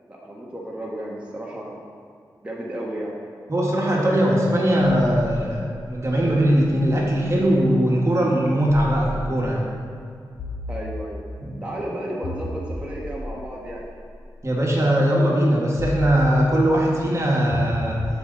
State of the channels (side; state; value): both; normal; correlation 0.88